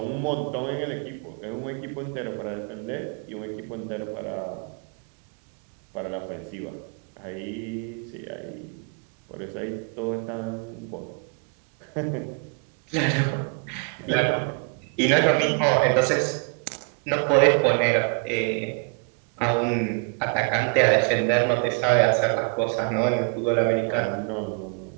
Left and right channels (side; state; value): left; quieter; 38.9 dB